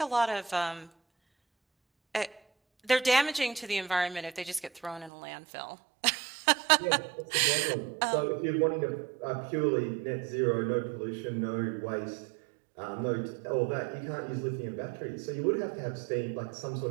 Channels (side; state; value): left; drops out; at 5.1 s